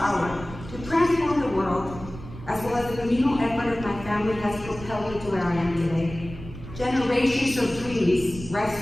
to transform the world, as well as the communal effort of my family, has propelled me to where I am today. Generations of dreams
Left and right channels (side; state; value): right; noise; rumble, 13 dB below the sound